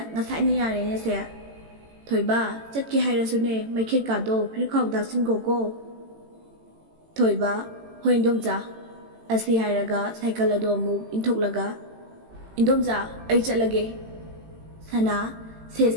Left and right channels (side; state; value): left; late; 18 ms